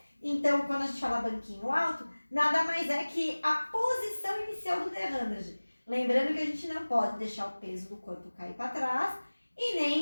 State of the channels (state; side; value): inverted; both; correlation -1.00